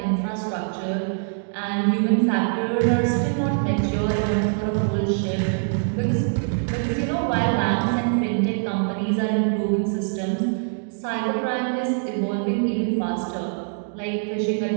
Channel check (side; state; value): left; silent; digital silence